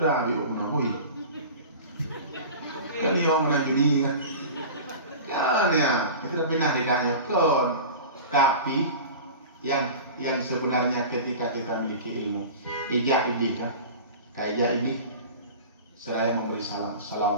biu menahui. Kan dia orang nak judi kan? Kan ya, itu dah pindah tidaknya kon. Tapi yang sebenarnya ketika kita memiliki ilmu, ijak ini kan, kayak ini, saya memberi salam,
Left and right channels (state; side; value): inverted; both; correlation -0.35